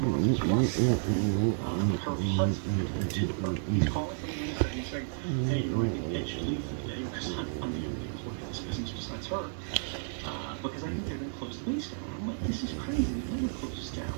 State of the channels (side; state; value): left; silent; digital silence